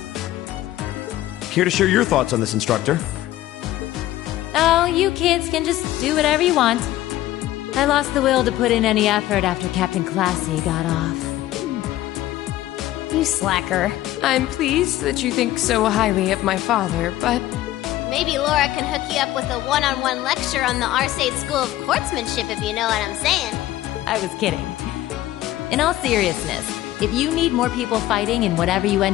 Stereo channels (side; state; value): right; quieter; 14.8 dB